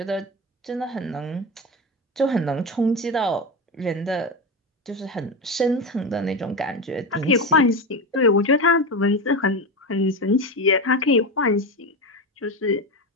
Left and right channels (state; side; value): normal; both; correlation 0.19